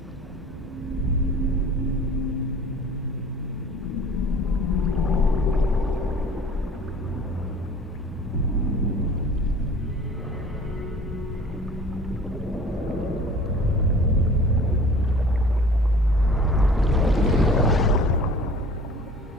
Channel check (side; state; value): both; normal; correlation 0.46